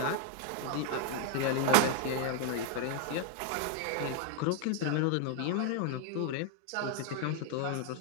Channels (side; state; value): both; different; correlation 0.00